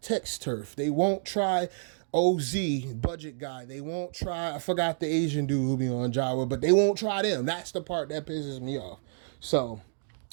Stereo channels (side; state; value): left; silent; digital silence